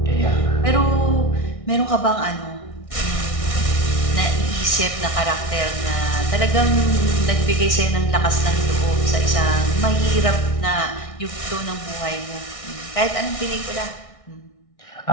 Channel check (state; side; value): late; right; 1.6 ms